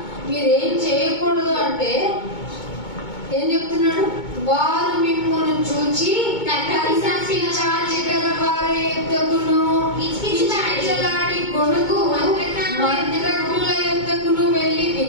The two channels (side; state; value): right; late; 2.2 ms